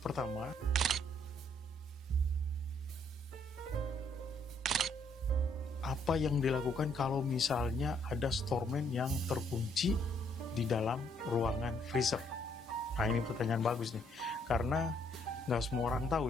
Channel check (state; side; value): normal; both; correlation 0.69